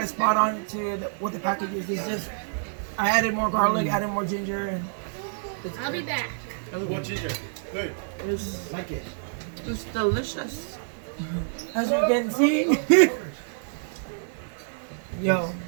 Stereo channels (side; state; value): left; silent; 60 dB below the other